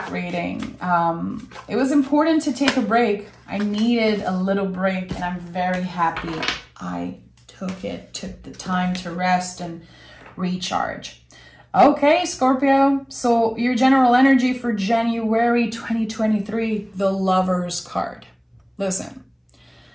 reading. It was important to take a break. I needed a little break, and I'm very happy I took the time to rest and recharge. Okay, Scorpio, so your general energy for January 2023, the Lover's card. Listen,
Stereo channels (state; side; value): identical; both; correlation 1.00